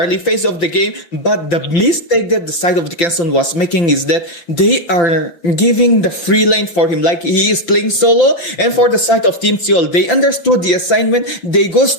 phase of the game. But the mistake that the side of Dickinson was making is that they are giving the free lane for him, like he is playing solo. And for the side of Team Seoul, they understood the assignment. They go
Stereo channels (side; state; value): right; late; 5.9 ms